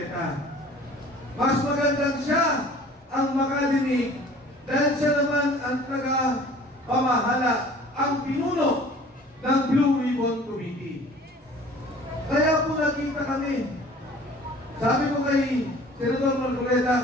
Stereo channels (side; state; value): both; normal; correlation 0.48